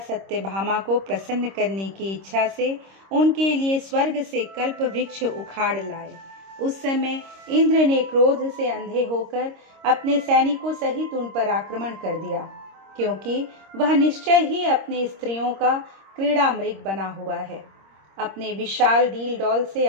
को प्रसन्न करने की इच्छा से उनके लिए स्वर्ग से कल्प वृक्ष उखाड़ लाए। उस समय इंद्र ने क्रोध से अंधे होकर अपने सैनिकों सहित उन पर आक्रमण कर दिया, क्योंकि वह निश्चय ही अपने स्त्रियों का क्रीड़ा मृग बना हुआ है। अपने विशाल डील डौल से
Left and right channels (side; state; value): left; late; 26 ms